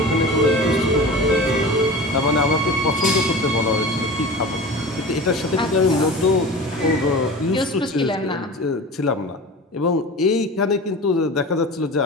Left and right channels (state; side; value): normal; both; correlation 0.34